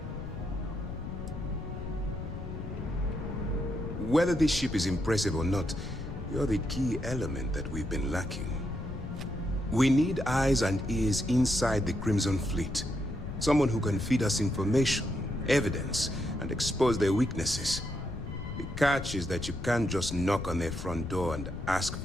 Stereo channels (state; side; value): noise; left; rumble, 7 dB below the sound